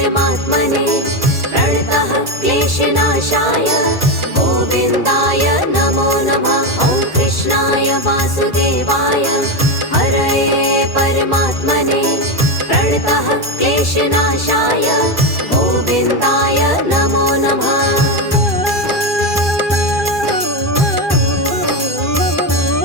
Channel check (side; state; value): left; late; 2.4 ms